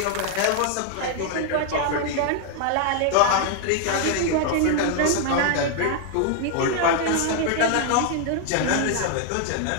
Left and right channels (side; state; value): both; different; correlation 0.00